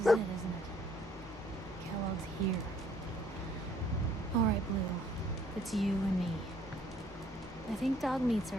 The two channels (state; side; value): normal; both; correlation 0.62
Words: it, isn't it? Kellogg's here. All right, Blue. It's you and me. I think dog meat's